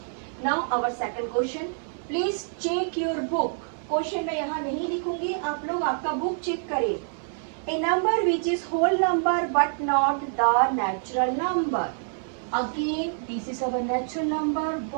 Now our second question, please check your book. Question मैं यहाँ नहीं लिखूंगी, आप लोग आपका बुक चेक करें। A number which is whole number but not the natural number. Again this is our natural number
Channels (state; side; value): silent; left; digital silence